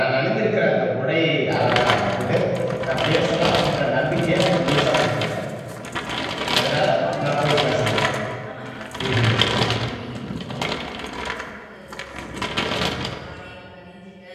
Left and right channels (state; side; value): identical; both; correlation 1.00